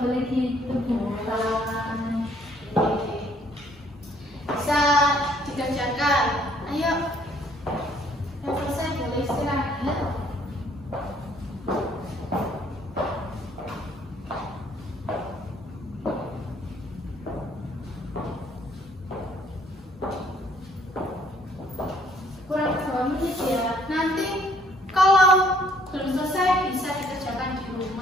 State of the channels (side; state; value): both; normal; correlation 0.63